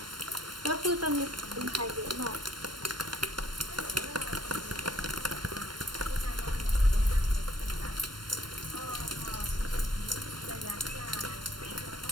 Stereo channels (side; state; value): left; late; 0.72 ms